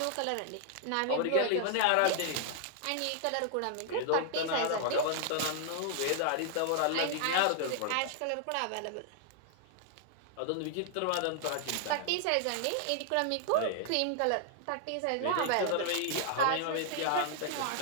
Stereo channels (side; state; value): both; different; correlation 0.00